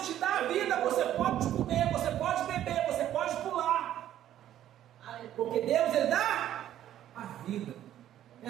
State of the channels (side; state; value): left; quieter; 11.8 dB